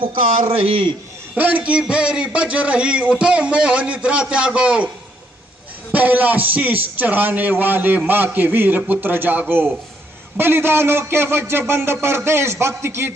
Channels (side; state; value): both; normal; correlation 0.72